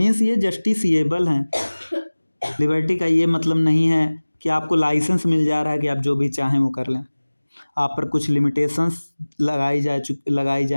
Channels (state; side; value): inverted; both; correlation -1.00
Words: ये जस्टिसिएबल हैं। लिबर्टी का ये मतलब नहीं है कि आपको लाइसेंस मिल जा रहा है कि आप जो भी चाहें वो कर लें। आप पर कुछ लिमिटेशंस लगाई